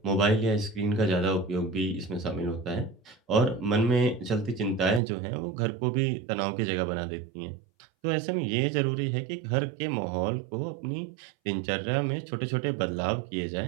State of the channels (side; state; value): left; drops out; at 5.0 s